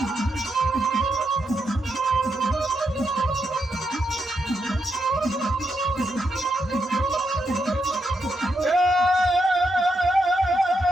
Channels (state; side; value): normal; both; correlation 0.82